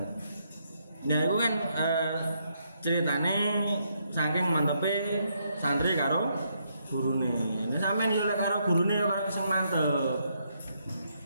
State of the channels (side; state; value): both; inverted; correlation -0.76